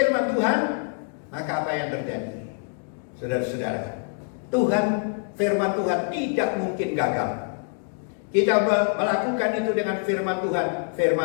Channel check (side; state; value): right; silent; 62 dB below the other